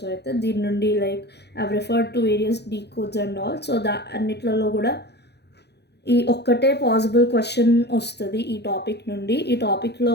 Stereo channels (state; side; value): late; right; 0.49 ms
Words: అయితే. దీని నుండి like I referred to various decodes and all. So అన్నిట్లలో కూడా ఈ ఒక్కటే పాసిబుల్ క్వశ్చన్ వస్తుంది ఈ టాపిక్ నుండి. ఈ